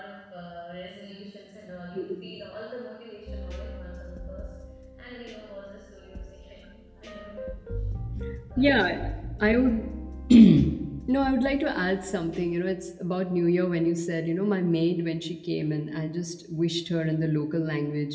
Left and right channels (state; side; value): identical; both; correlation 1.00